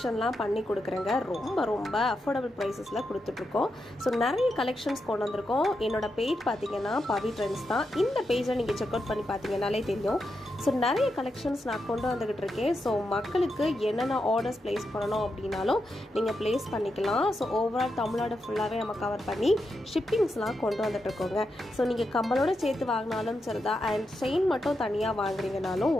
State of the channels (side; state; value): both; normal; correlation 0.86